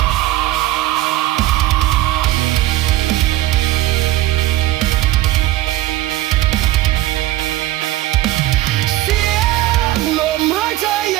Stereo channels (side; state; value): left; quieter; 15.7 dB